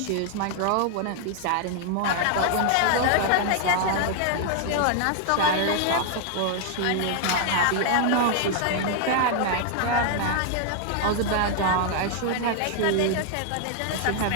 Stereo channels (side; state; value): both; different; correlation 0.00